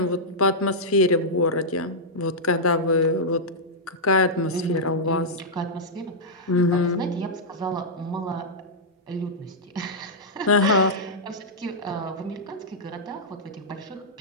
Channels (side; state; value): both; normal; correlation -0.09